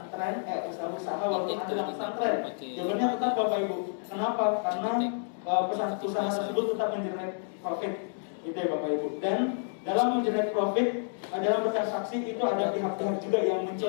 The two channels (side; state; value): right; silent; digital silence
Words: usaha-usaha walaupun ada dalam pesantren? Jawabannya tetap Bapak Ibu. Kenapa? Karena usaha tersebut tetap mengenerate profit, gitu ya Bapak Ibu. Dan dalam mengenerate profit, dalam bertransaksi itu ada pihak-pihak juga yang